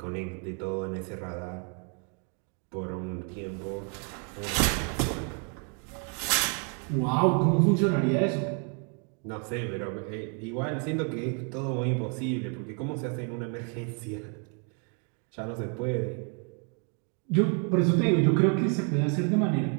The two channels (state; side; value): quieter; left; 39.6 dB